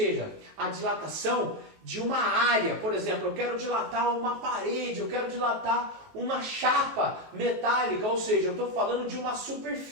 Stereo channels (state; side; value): late; left; 19 ms